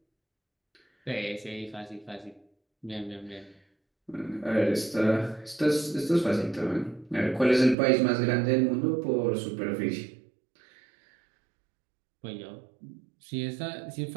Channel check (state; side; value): drops out; left; at 7.8 s